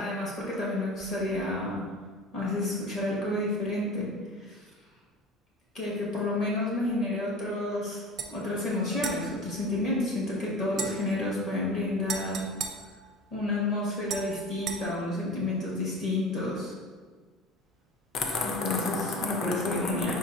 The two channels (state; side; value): normal; both; correlation 0.36